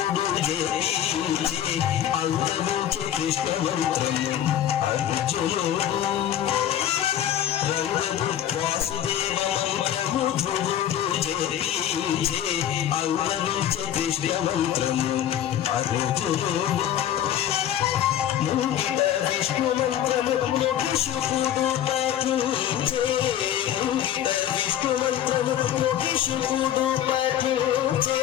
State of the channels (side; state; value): right; quieter; 10.9 dB